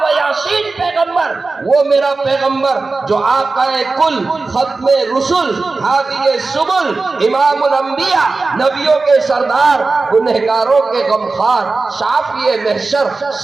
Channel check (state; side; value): quieter; left; 3.7 dB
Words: یاسین پیغمبر، وہ میرا پیغمبر جو آقا کل، ختم رسل، ہادی سبل، امام الانبیاء، نبیوں کے سردار، گنہگاروں کے غمخوار، شافی محشر،